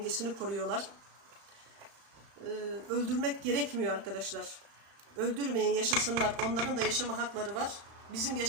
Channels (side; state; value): left; late; 36 ms